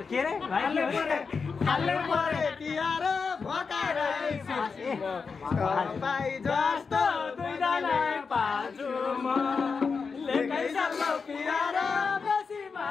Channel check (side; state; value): right; quieter; 5.2 dB